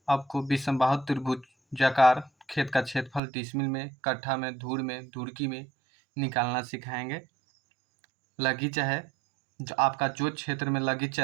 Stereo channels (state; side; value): drops out; left; at 3.2 s